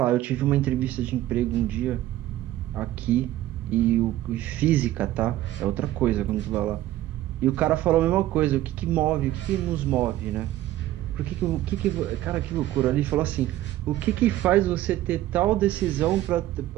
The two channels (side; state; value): left; quieter; 14.6 dB